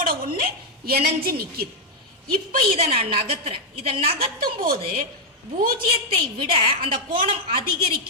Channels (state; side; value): normal; both; correlation -0.01